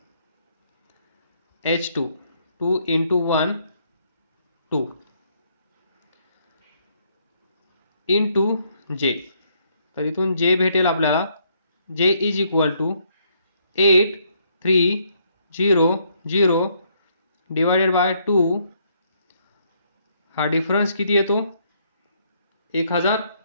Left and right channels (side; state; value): both; inverted; correlation -0.71